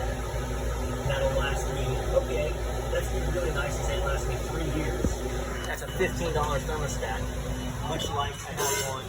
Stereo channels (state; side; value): identical; both; correlation 1.00